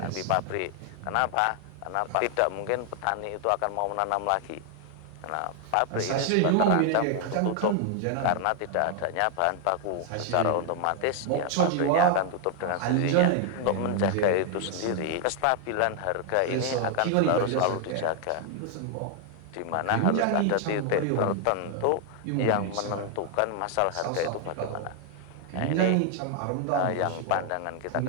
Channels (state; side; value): different; both; correlation 0.00